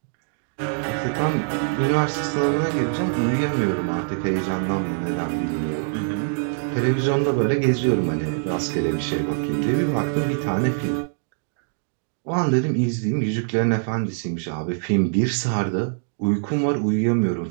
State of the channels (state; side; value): silent; left; digital silence